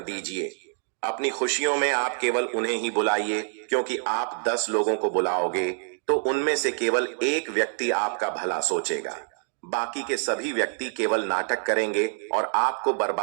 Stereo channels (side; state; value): left; silent; digital silence